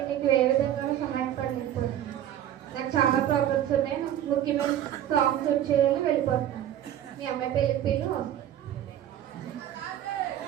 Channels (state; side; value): quieter; left; 11.3 dB